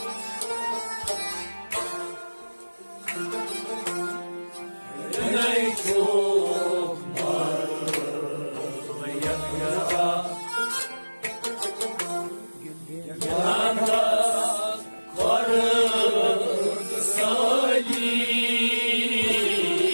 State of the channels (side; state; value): both; inverted; correlation -1.00